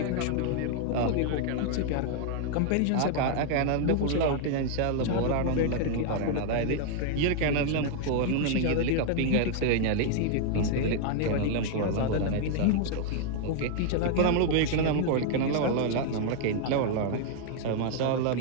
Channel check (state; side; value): different; both; correlation 0.00